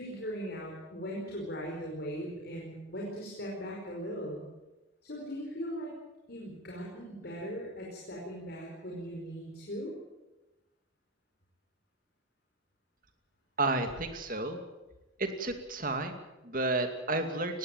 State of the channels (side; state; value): both; normal; correlation 0.07